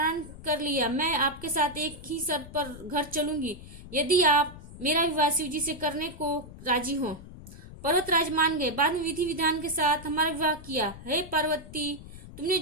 कर लिया। मैं आपके साथ एक ही शर्त पर घर चलूंगी, यदि आप मेरा विवाह शिवजी से करने को राजी हो। पर्वतराज मान गए। बाद में विधि विधान के साथ हमारा विवाह किया। हे पार्वती, तुमने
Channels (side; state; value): left; noise; rumble, 15 dB below the sound